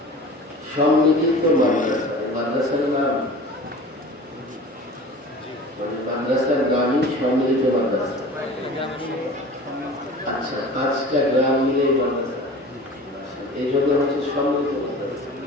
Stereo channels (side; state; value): both; normal; correlation 0.39